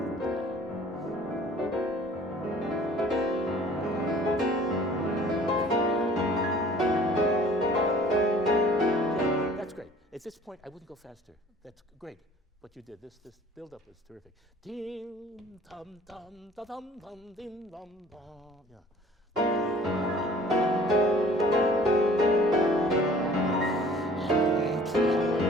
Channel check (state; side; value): normal; both; correlation 0.51